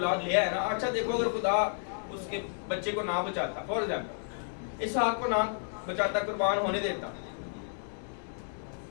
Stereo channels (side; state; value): right; silent; digital silence